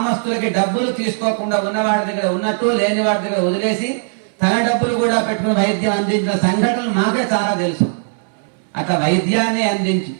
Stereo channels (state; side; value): silent; left; 66 dB below the other